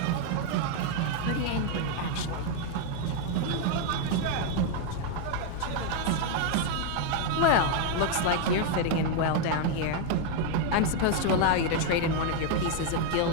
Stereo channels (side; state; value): both; different; correlation 0.01